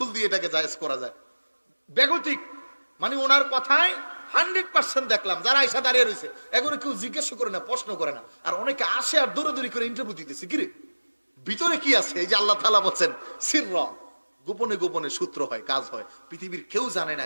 দিয়ে এটাকে জায়েজ করা যায়? বেগতিক মানে ওনার কথায় 100% দেখলাম যারা আয়সা দাঁড়িয়ে রয়েছে এগুলো কেউ জিজ্ঞেস করে না, প্রশ্ন করে না, আর অনেকে আসে আর দৌড়াদৌড়ি করে ইন্টারভিউ দিতেছে। কিরে ভিতরে কি আছে? এই যে আল্লাহ তাআলা বলছেন সিররা, গোপনে গোপনে সূত্র হয়, কাজ হয়। পৃথিবীর কেউ জানে না,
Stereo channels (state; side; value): inverted; both; correlation -1.00